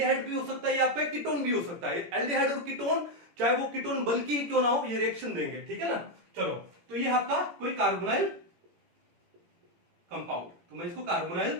भी हो सकता है, ये आपका कीटोन भी हो सकता है। एल्डिहाइड और कीटोन, चाहे वो कीटोन बल्कि ही क्यों ना हो, ये रिएक्शन देंगे। ठीक है ना, चलो, तो ये आपका कोई कार्बोनाइल कंपाउंड, तो मैं इसको कार्बोनाइल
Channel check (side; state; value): left; late; 17 ms